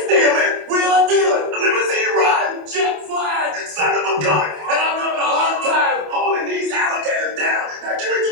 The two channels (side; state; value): left; late; 27 ms